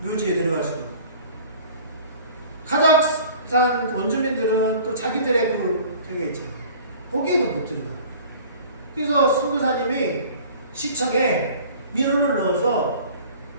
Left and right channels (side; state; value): both; inverted; correlation -0.46